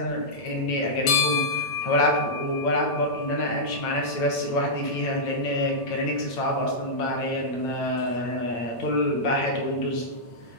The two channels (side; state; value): right; late; 8.9 ms